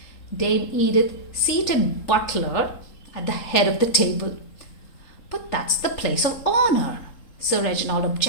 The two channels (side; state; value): right; late; 3.8 ms